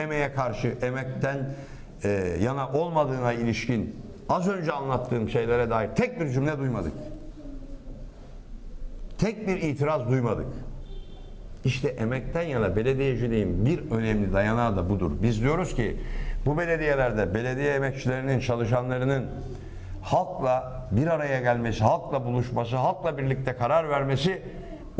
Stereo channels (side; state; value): both; identical; correlation 1.00